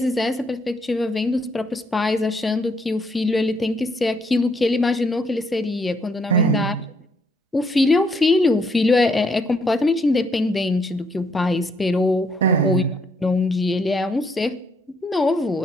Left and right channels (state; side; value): normal; both; correlation 0.70